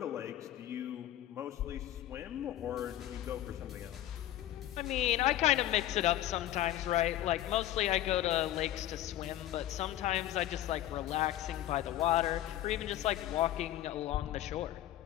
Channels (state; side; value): quieter; right; 13.5 dB